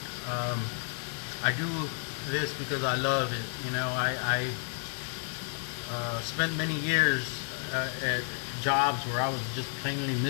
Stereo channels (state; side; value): silent; right; 57 dB below the other